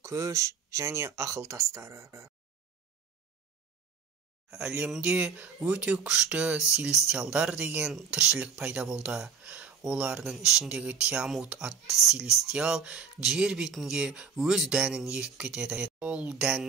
күш және ақыл тастары. Әлемде өте күшті селестиалдар деген тіршілік пайда болды. Олардың ішіндегі Тиамут атты селестиал жер бетінде өз дәнін егіп кетеді. Ол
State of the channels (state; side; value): quieter; left; 6.2 dB